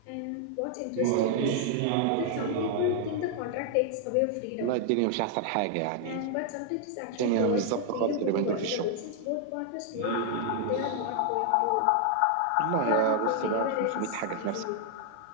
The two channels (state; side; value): different; both; correlation 0.00